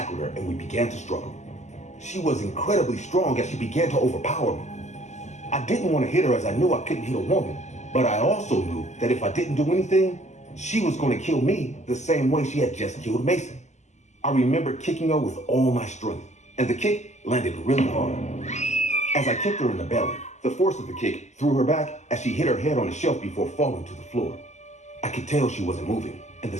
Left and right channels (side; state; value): right; late; 0.33 ms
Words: her and we began to struggle. She was incredibly strong as she began to overpower me. I didn't want to hit her as I knew I couldn't hit a woman, but I also knew that if I didn't do anything, she was going to kill me the same way she had just killed Mason. I remember kicking her with all my strength, and the kick landed really hard. As I kicked her in the belly, the force of the kick threw her back as she hit her head on a shelf before falling to the floor. I could tell she wasn't moving, and the